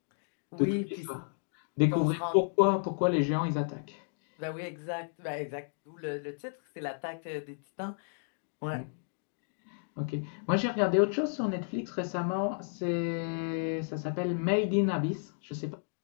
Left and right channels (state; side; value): silent; right; digital silence